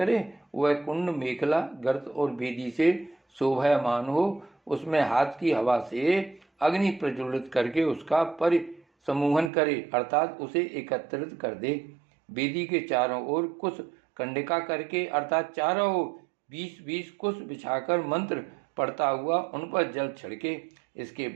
वह कुंड मेखला, गर्त और वेदी से शोभायमान हो। उसमें हाथ की हवा से अग्नि प्रज्वलित करके उसका परिसमूहन करे, अर्थात उसे एकत्रित कर दे। वेदी के चारों ओर कुश कंडिका करके, अर्थात चारों ओर 20-20 कुश बिछाकर मंत्र पढ़ता हुआ उन पर जल छिड़के। इसके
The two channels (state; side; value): drops out; left; at 9.5 s